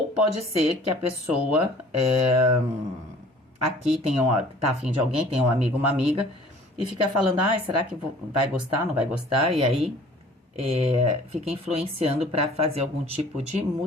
pode ser que a pessoa... aqui tá afim de alguém, tem um amigo, uma amiga, e fica falando, será que vai gostar, não vai gostar? E aí fica influenciando para fazer algum tipo de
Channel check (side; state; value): both; normal; correlation 0.50